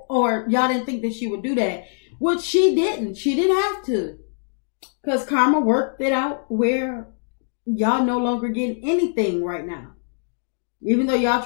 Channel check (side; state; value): right; silent; digital silence